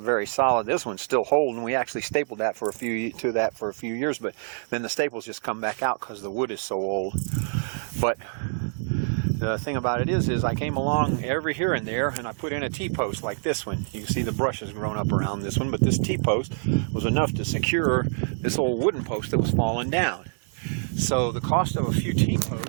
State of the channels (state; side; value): silent; left; 61 dB below the other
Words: very solid. This one's still holding. We actually stapled that for a few years, but then the staples just come back out because the wood is so old. But the thing about it is I came along every here and there and I put in a T-post like this one. You can see the brush has grown up around this one, but this T-post was enough to secure this old wooden post that was falling down. So the cost of a few